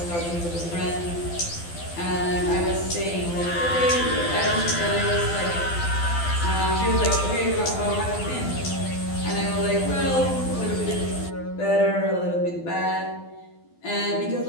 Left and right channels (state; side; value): late; right; 12 ms